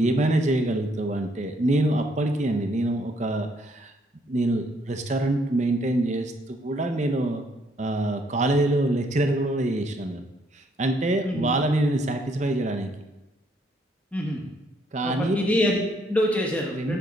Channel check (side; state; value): both; normal; correlation 0.69